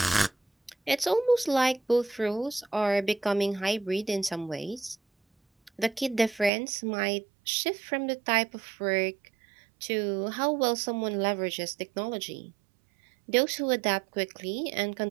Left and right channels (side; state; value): left; drops out; at 6.5 s